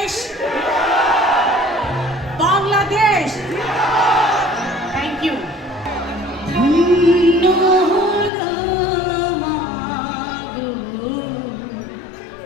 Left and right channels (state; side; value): drops out; right; at 8.3 s